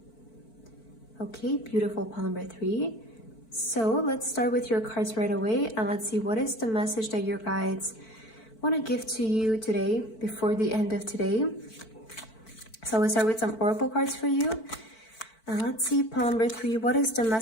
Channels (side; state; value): right; late; 4.5 ms